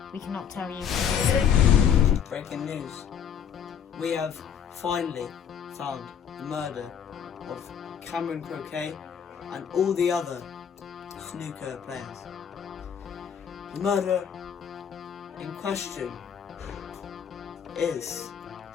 we cannot tell you. Breaking news. We have finally found the murder of Cameron Croquet and all the other snooker players. The murder in question is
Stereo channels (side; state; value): right; quieter; 8.0 dB